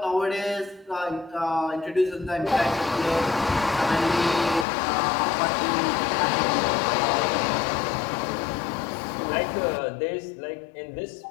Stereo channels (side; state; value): right; drops out; at 4.7 s